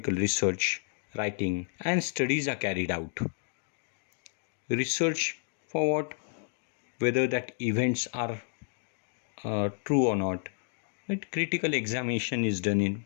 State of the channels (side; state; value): right; silent; 57 dB below the other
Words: research, writing, and studies are carried out. Research for what? Whether that events are true or not. Right? Critical examination is done